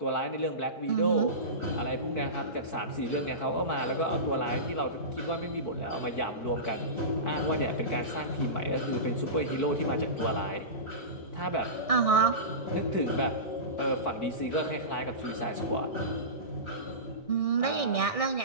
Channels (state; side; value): late; right; 4.6 ms